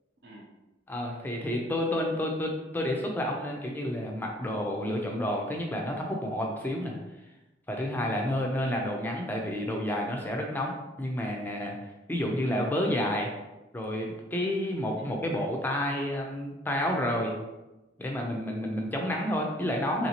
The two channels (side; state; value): both; normal; correlation 0.59